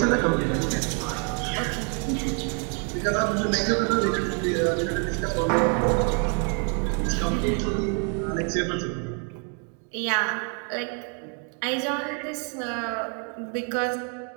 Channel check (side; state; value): left; quieter; 39.8 dB